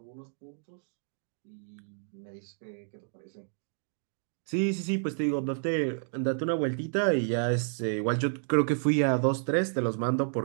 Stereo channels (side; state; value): left; silent; digital silence